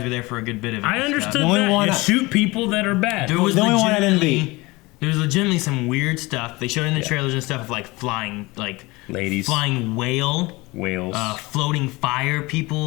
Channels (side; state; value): right; quieter; 22.7 dB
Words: were there for a good bit of it. I and understood stuff. The only that one you I- shoot people that are bad. There was The only one I didn't legitimately- There was legitimately some weird stuff. They showed in the trailers and stuff of like flying, like Ladies. flying whales, floating fire